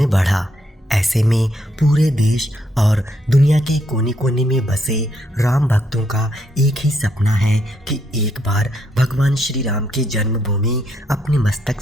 बढ़ा। ऐसे में पूरे देश और दुनिया के कोने कोने में बसे राम भक्तों का एक ही सपना है कि एक बार भगवान श्री राम की जन्मभूमि अपने मस्तक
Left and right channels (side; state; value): both; normal; correlation 0.75